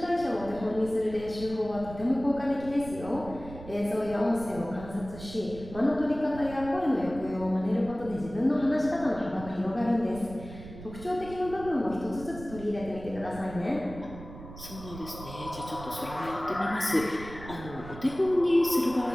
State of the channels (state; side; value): noise; right; rumble, 14 dB below the sound